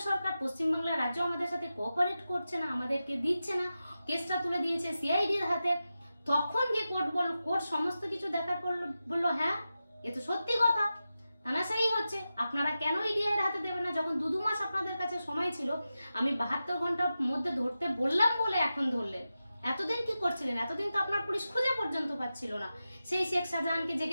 সরকার, পশ্চিমবাংলার রাজ্য আমাদের সাথে কোঅপারেট করছে না, আমাদেরকে দিচ্ছে না, কেসটা তুলে দিয়েছে সিআইডির হাতে। তখন গিয়ে কোর্ট সমস্ত কিছু দেখার পর বললো হ্যাঁ এ তো সত্যি কথা, তানাশাই হচ্ছে, আপনারা কেন ইডি এর হাতে দেবেন না? যখন 2 মাস আপনাদের কাছে সময় ছিল, আমি 72 ঘন্টার মধ্যে ধরতে বললাম বলে এখন ধরলেন। এতদিন কি করছিলেন? এতদিন তো আপনার পুলিশ খুঁজে পর্যন্ত পাচ্ছিল না সেই শেখ শাহজাহানকে, যে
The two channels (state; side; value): inverted; both; correlation -0.92